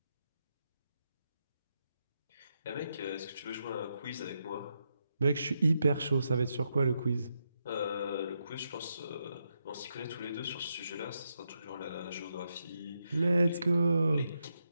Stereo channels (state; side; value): inverted; both; correlation -0.83